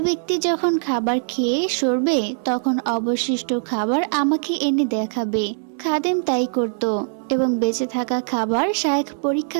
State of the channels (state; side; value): silent; left; 63 dB below the other